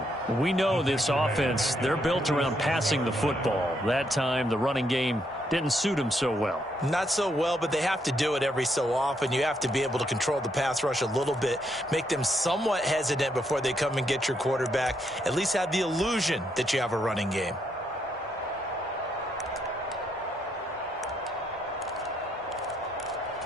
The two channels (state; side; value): normal; both; correlation 0.76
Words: We know this offense, they're built around passing the football. That time, the running game didn't suit them so well. Not so well, but they have to do it every so often. You have to be able to control the pass rush a little bit, make them somewhat hesitant before they come and get your quarterback. At least have the illusion that you have a running game.